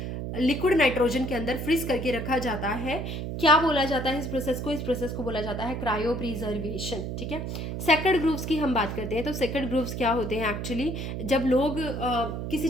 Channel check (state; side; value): noise; right; hum, 5 dB below the sound